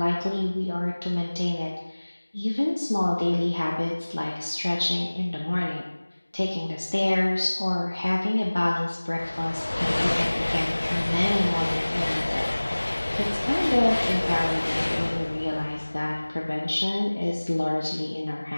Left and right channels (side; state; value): both; inverted; correlation -1.00